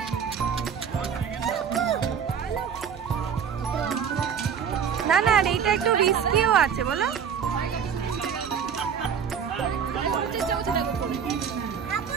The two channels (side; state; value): left; quieter; 7.4 dB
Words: না না, এইটা একটু রিস্কিও আছে বলো।